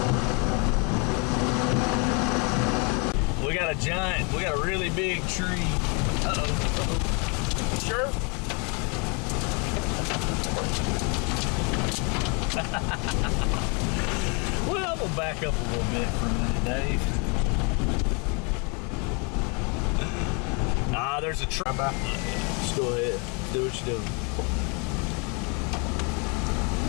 We got a really big tree. Uh-oh. Sure. Well, we'll back up a little bit for a minute, Dave. There's a tree. Just go ahead. Do what you're doing.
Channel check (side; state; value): right; quieter; 33.8 dB